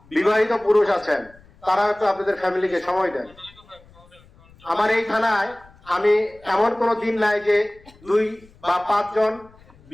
বিবাহিত পুরুষ আছেন তারা একটু আপনাদের ফ্যামিলিকে সময় দেন। আমার এই থানায় আমি এমন কোনো দিন নাই যে 2 বা 5 জন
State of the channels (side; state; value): left; noise; rumble, 27 dB below the sound